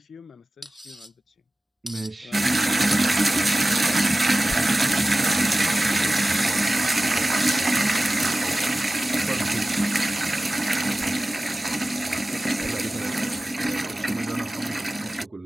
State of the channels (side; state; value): both; normal; correlation 0.96